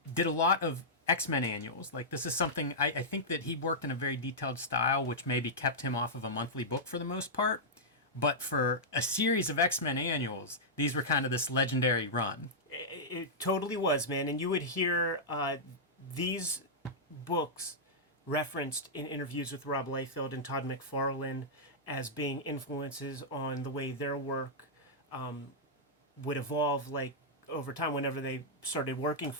did a lot of X-Men annuals. Like, this is something, I think that he worked in a very detailed style, which maybe kept him off of a monthly book for the most part. But for a series of X-Men annuals, these were kind of this legendary run. It totally was, man. And you would hear these books referenced in interviews with Rob Liefeld and Todd McFarlane as being influences on the way their work would evolve, like, over time whenever they started working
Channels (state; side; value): normal; both; correlation -0.10